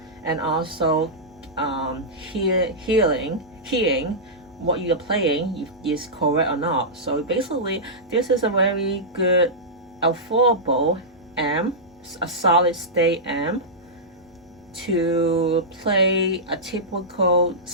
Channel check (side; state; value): both; normal; correlation -0.13